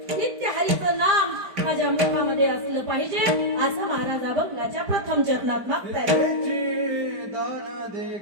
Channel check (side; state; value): left; late; 5.0 ms